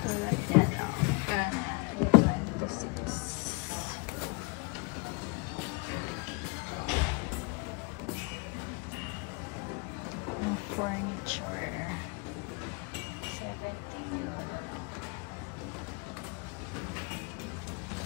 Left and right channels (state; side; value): quieter; right; 29.2 dB